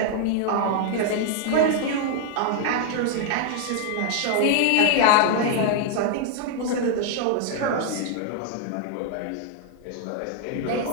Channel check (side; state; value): both; different; correlation 0.00